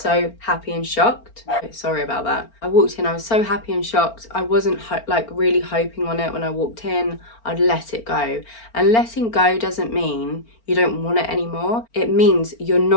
happy and shocked. Sorry about that. I walked in, I was so happy and shocked. I wasn't like really hoping on it when I walked in. I'd let it go. And letting go doesn't mean you don't want it anymore. It means you're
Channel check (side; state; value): right; late; 4.4 ms